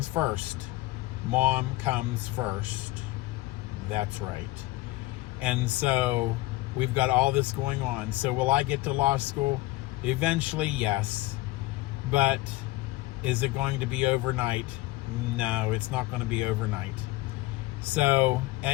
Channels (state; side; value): quieter; right; 19.1 dB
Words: first. Mom comes first. That's right. And so we've got all this going on. So will I get to law school? Eventually, yes. But is it going to be overnight? No, it's not going to be overnight. So